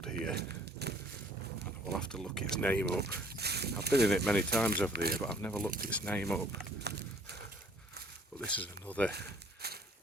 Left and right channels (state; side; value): normal; both; correlation 0.57